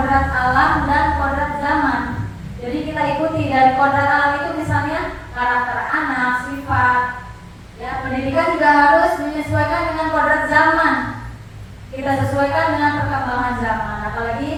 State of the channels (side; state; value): both; identical; correlation 1.00